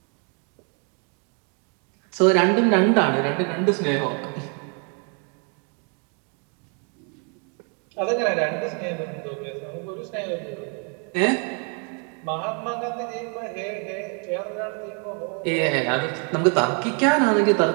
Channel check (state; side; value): quieter; left; 39.0 dB